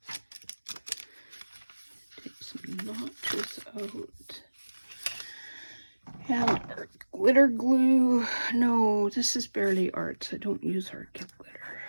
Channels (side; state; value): both; inverted; correlation -1.00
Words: Notches out. And art glitter glue. No, this is barely arts. I don't use art glitter.